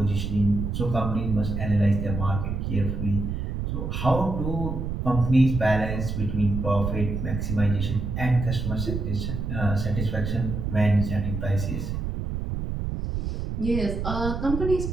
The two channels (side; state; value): right; noise; rumble, 3 dB below the sound